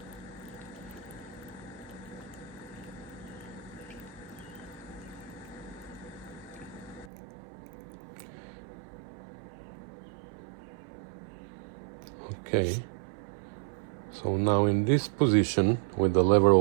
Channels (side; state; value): left; drops out; at 7.1 s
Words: Okay, so now in this position with the lever